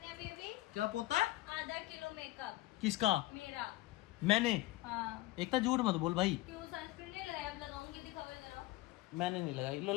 अभी। क्या पोता है? आधा किलो मेकअप किसका? मेरा। मैंने? हाँ। एक तो झूठ मत बोल भाई। क्यों सनस्क्रीन नहीं लगाया? अब लगाऊंगी, दिखाओ जरा। मैंने नहीं लगाई, लो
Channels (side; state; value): right; quieter; 17.7 dB